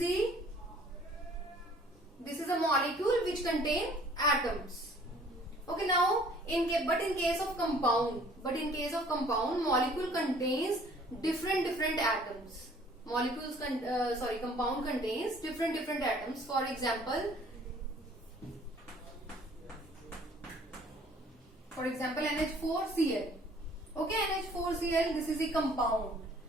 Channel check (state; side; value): normal; both; correlation 0.55